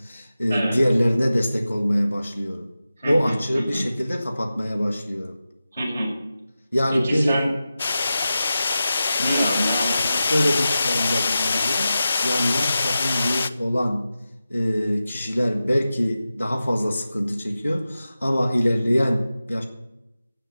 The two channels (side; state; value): both; inverted; correlation -0.93